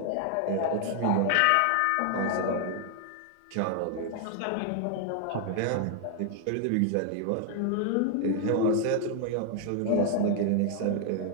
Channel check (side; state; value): both; different; correlation 0.00